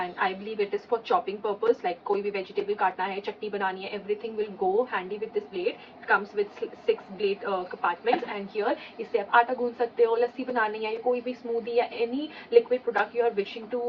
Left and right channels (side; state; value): both; identical; correlation 1.00